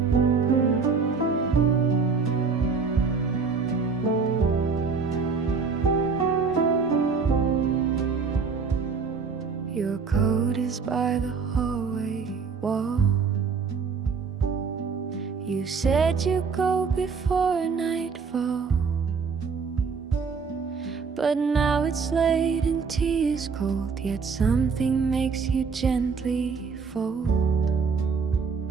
Your coat is by the hallway wall. You said you'd go before nightfall, but now it's late and tea is cold. Yet something makes you gently fold.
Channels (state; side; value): quieter; left; 5.3 dB